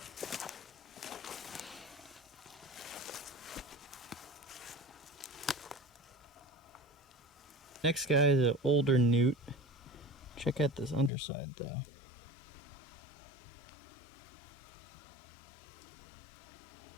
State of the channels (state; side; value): drops out; right; at 11.1 s